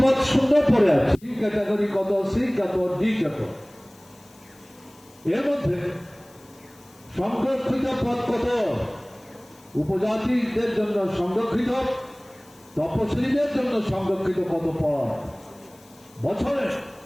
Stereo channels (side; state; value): left; noise; hiss, 27 dB below the sound